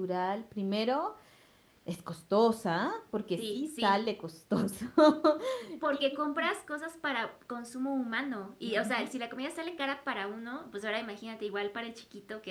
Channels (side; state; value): both; identical; correlation 1.00